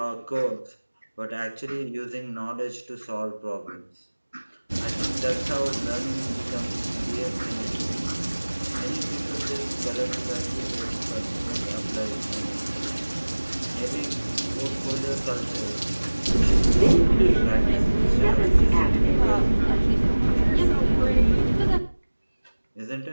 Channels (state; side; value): inverted; both; correlation -1.00